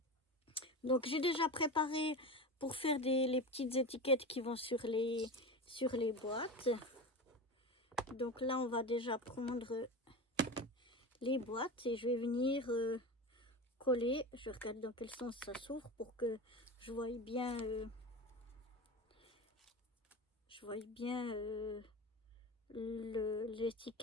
Donc j'ai déjà préparé pour faire les petites étiquettes qui vont sur les boîtes. Donc là on va déjà prendre les boîtes et je vais venir coller. Je regarde dans quel sens ça s'ouvre pour que je voie bien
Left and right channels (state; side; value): normal; both; correlation 0.26